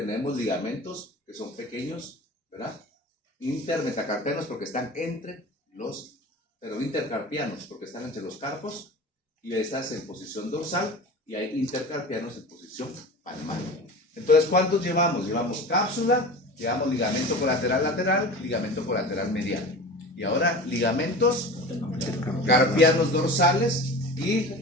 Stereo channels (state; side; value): normal; both; correlation 0.34